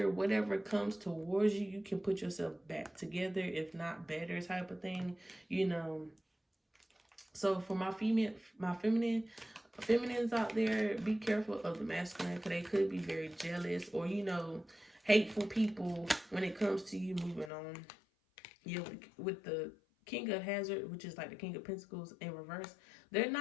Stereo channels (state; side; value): drops out; right; at 17.5 s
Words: Whatever comes towards you, you can put yourself back together, if not better, type of thing. So for my feminines out there, be careful of the masculine, because they could be very jealous, or hateful people when it comes to you moving on. With the King of Hazard, which is like the King of Pentacles in reverse, they're